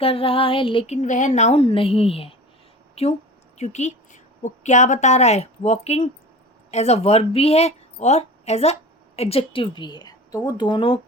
रहा है लेकिन वह नाउन नहीं है। क्यों? क्योंकि वो क्या बता रहा है? वॉकिंग एज अ वर्ब भी है और एज अ एडजेक्टिव भी है, तो वो दोनों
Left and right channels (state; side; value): normal; both; correlation 0.36